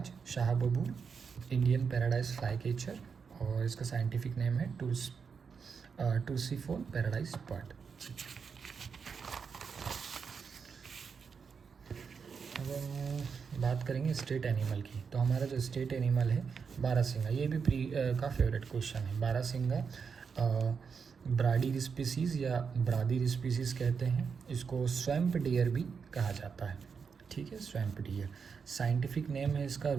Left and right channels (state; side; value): quieter; left; 5.9 dB